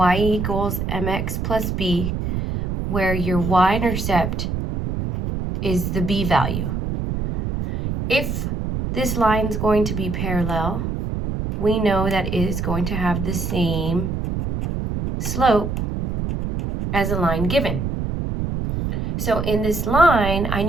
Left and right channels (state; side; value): noise; right; rumble, 2 dB below the sound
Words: equals mx plus b, where your y-intercept is the b value. If this line is going to be parallel, we know that it is going to have the same slope as a line given. So in this line, I